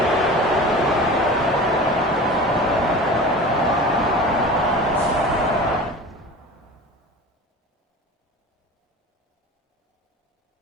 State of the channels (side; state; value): both; normal; correlation 0.36